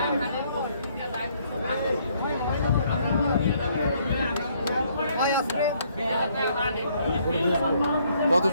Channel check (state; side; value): inverted; both; correlation -0.67